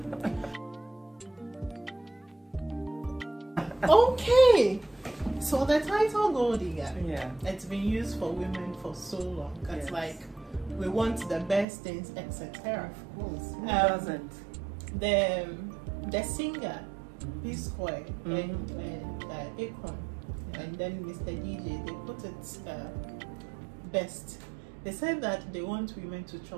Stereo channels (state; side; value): drops out; left; at 11.7 s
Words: it. Okay, so the title gold digger, it's been used for women for so long. It's like we want the best things, etc. Of course, who doesn't? The singer P Square and Akon and then Mr. DJ, they put it best. They said that they want women to